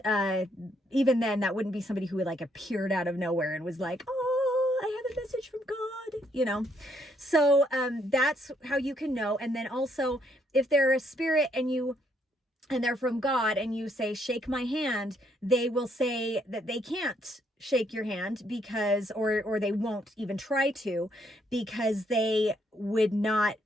even then, that wouldn't be somebody who like appeared out of nowhere and was like, oh, I have a message from God, So that's how you can know. And then also, if they're a spirit and they're from God, and you say, shake my hand, they will say that they can't shake your hand because, or they won't even try to, because they would not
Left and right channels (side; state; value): both; normal; correlation 0.71